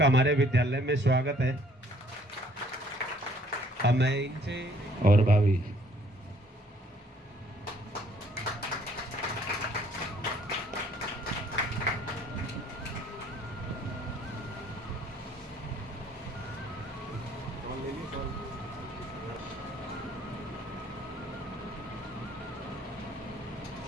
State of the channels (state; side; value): normal; both; correlation 0.61